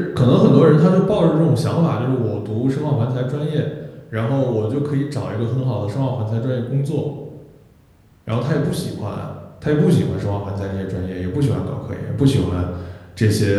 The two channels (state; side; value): identical; both; correlation 1.00